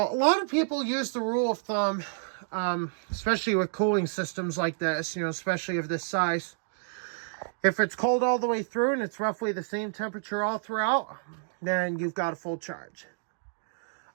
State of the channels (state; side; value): silent; left; digital silence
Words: a lot of people use the rule of thumb, especially with cooling systems like this, especially of this size. If it's cold all the way through and it's roughly the same temperature all throughout, then you've got a full charge.